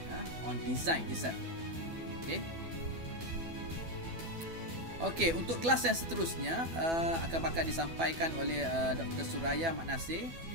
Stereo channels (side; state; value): left; late; 12 ms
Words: on design itself. Okey, untuk kelas yang seterusnya akan bakal disampaikan oleh Dr. Suraya Mat Nasir.